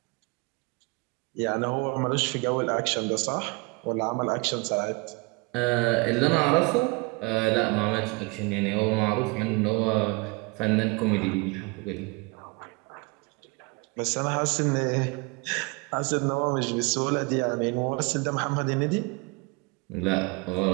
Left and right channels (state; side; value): quieter; left; 28.3 dB